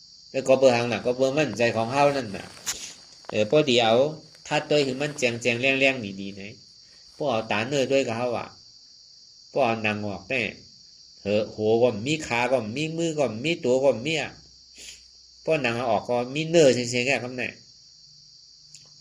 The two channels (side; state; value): both; identical; correlation 1.00